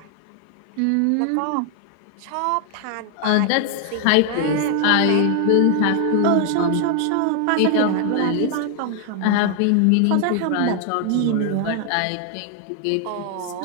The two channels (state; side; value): different; both; correlation 0.00